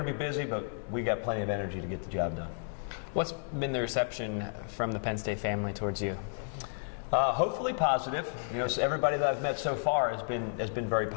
to be busy, but we got plenty of energy to get the job done. What's been the reception from the Penn State family towards you? Hopefully positive. So everybody that I've met so far has been very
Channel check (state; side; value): silent; right; 56 dB below the other